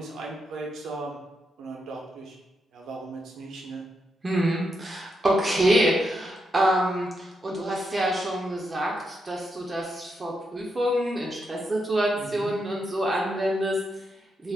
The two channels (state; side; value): normal; both; correlation 0.83